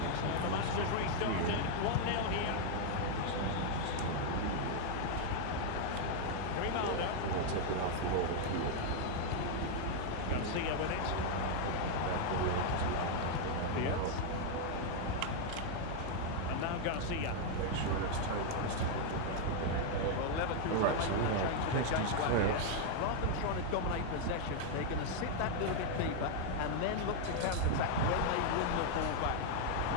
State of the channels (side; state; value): both; different; correlation 0.00